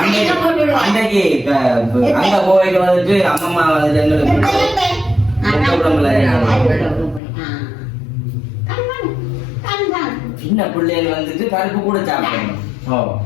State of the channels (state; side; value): drops out; right; at 7.2 s